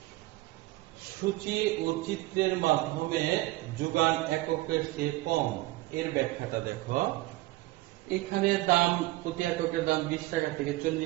সূচি ও চিত্রের মাধ্যমে যোগান এককের চেয়ে কম, এর ব্যাখ্যাটা দেখো। এখানে দাম প্রতি এককের দাম 20 টাকা থেকে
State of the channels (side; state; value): left; quieter; 19.0 dB